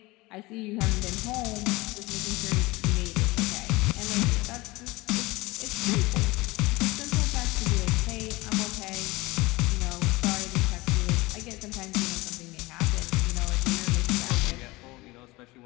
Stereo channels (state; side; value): quieter; right; 21.7 dB